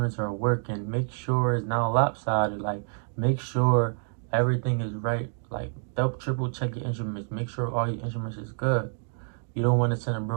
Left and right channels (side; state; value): left; silent; 58 dB below the other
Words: are working. Make sure it's not lopsided. Like, make sure everything is right. Like, double, triple check your instruments. Make sure all your instruments is good. You don't want to send a